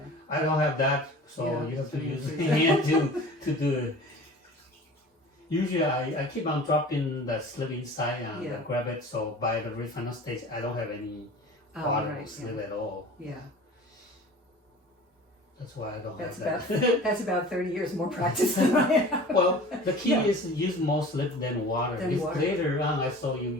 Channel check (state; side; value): normal; both; correlation 0.41